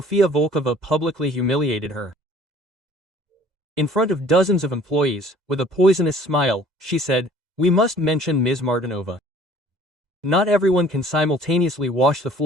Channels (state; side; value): late; left; 2.0 ms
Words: Volkova publicly humiliated her. In front of dozens of employees, with a poisonous smile, she said, "We must mention Ms. Martinova. Not everyone can simultaneously wash the